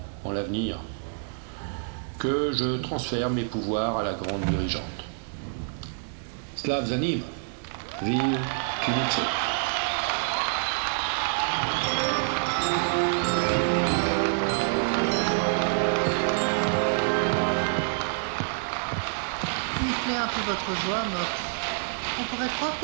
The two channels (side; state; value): left; silent; digital silence